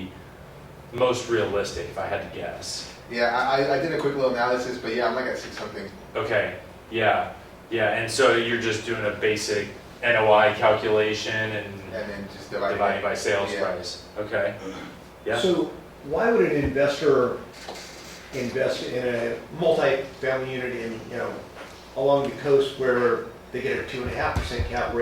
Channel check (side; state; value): both; identical; correlation 1.00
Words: most realistic if I had to guess. Yeah, I did a quick little analysis, but yeah, I'm like at 6 something. Okay, yeah, and so you're just doing a basic NOI calculation and then just dividing by sales price. Okay, yeah. So why would an investor invest in a multi-family unit in, along the coast where they get a 2.5% cap